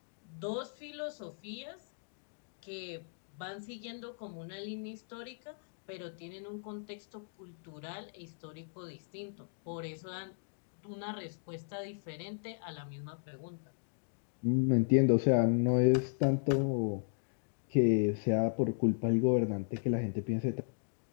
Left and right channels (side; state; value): right; silent; digital silence